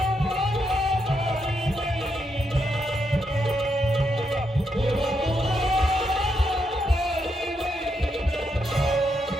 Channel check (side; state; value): both; normal; correlation 0.80